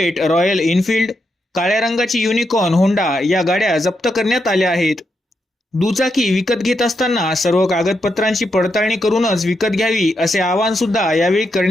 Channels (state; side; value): normal; both; correlation 0.83